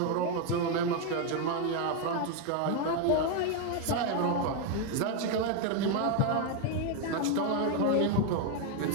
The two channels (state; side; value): different; both; correlation 0.01